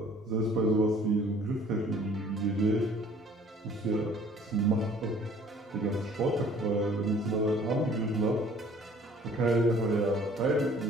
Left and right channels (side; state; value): both; normal; correlation 0.54